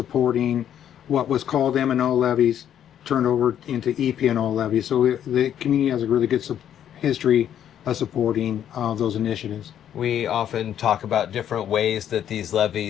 what was called M&O levies turned over into EP&O levies. So the community has a really good history of supporting those initiatives. We often talk about different ways that these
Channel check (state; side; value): quieter; right; 10.0 dB